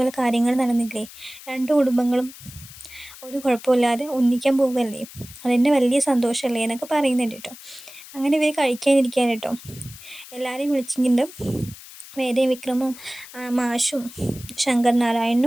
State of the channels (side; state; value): left; noise; hiss, 17 dB below the sound